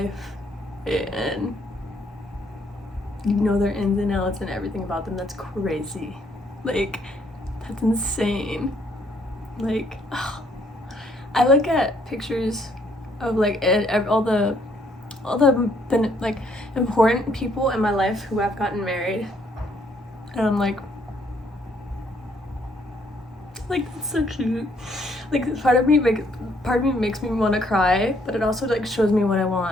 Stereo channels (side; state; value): both; normal; correlation 0.68